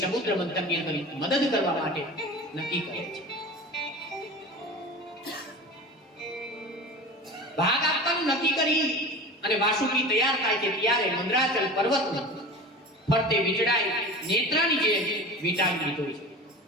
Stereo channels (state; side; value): normal; both; correlation 0.34